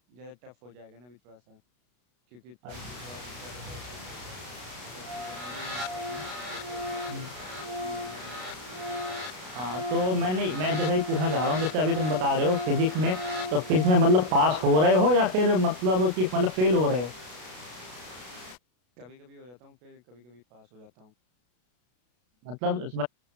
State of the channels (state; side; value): late; left; 33 ms